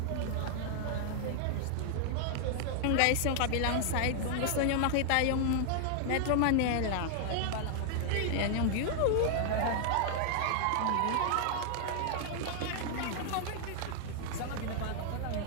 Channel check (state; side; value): different; both; correlation 0.00